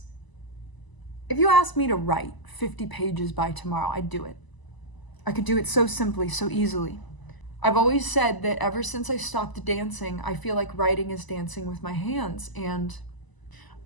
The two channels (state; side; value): late; right; 1.0 ms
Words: if you asked me to write 50 pages by tomorrow, I'd do it. I could do it so simply, so easily. I've always said that ever since I stopped dancing, I feel like writing is dancing with my hands. And